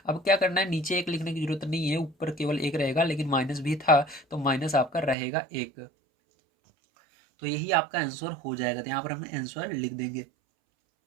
अब क्या करना है, नीचे एक लिखने की जरूरत नहीं है, ऊपर केवल एक रहेगा। लेकिन माइनस भी था तो माइनस आपका रहेगा 1। तो यही आपका आंसर हो जाएगा। तो यहाँ पर हम आंसर लिख देंगे।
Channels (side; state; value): left; drops out; at 5.2 s